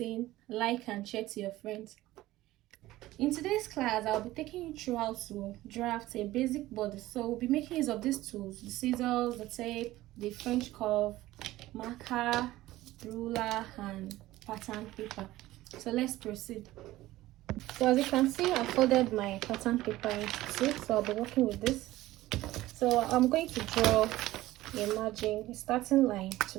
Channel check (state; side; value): quieter; left; 16.6 dB